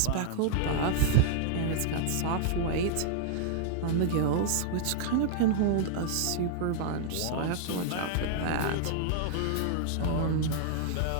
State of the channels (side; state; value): both; different; correlation -0.01